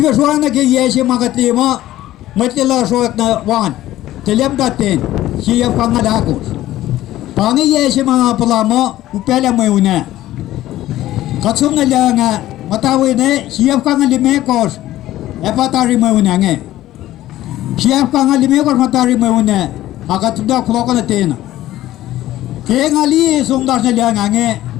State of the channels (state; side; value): quieter; right; 14.7 dB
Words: suang na kaya siya makatlima, matila suak na wan, telem datin, siya pangalakos. Pangi siya mga palamo, upela mo yun na. Katsum na lang nga, matawi na, siya pangalimekos, epatari mo yun nga. Siap ka ngali me kor matari me une akat dak floko na tena ke ngali sumdar na liang ange